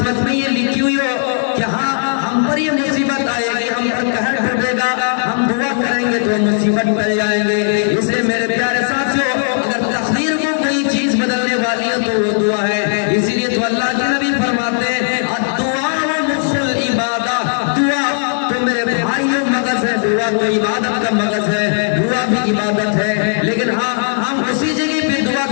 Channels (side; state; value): right; silent; digital silence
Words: میں یہ لکھی ہوئی ہو کہ ہاں ہم پر یہ مصیبت آئے گی، ہم پر قہر ٹوٹے گا، ہم دعا کریں گے تو مصیبت ٹل جائیں گے۔ اس لیے میرے پیارے ساتھیو اگر تقدیر کو کوئی چیز بدلنے والی ہے تو وہ دعا ہے۔ اسی لیے تو اللہ کے نبی فرماتے ہیں الدعاء مخ العبادہ، دعا تو میرے بھائیوں مغز ہے، دعا تو عبادت کا مغز ہے، دعا بھی عبادت ہے، لیکن ہاں ہم اسی جگہ پہ دعا